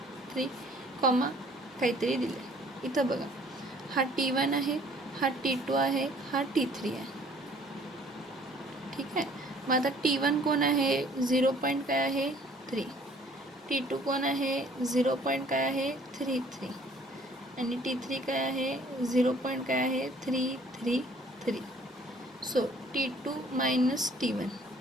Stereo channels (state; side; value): normal; both; correlation 0.56